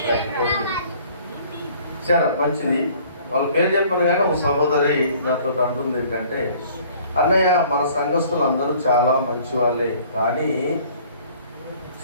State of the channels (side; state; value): both; inverted; correlation -0.54